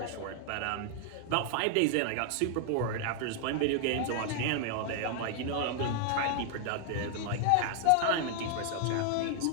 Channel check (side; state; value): both; different; correlation 0.00